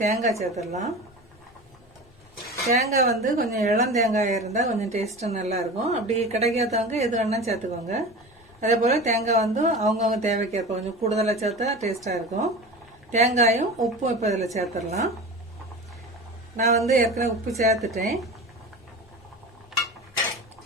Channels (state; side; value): normal; both; correlation 0.32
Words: தேங்காய் சேர்த்துடலாம். தேங்காய் வந்து கொஞ்சம் இளம் தேங்காய் இருந்தால் கொஞ்சம் டேஸ்ட்டு நல்லா இருக்கும். அப்படி கிடைக்காதவங்க எது வேணா சேர்த்துக்கோங்க. அதே போல் தேங்காய் வந்து அவங்கவுங்க தேவைக்கேற்ப கொஞ்சம் கூடுதலாக சேர்த்தா டேஸ்ட்டாக இருக்கும். தேங்காயும் உப்பும் இப்போ இதில் சேர்த்துடலாம். நான் வந்து ஏற்கனவே உப்பு சேர்த்துட்டேன்.